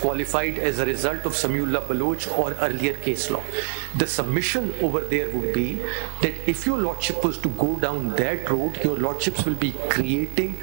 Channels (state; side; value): silent; left; digital silence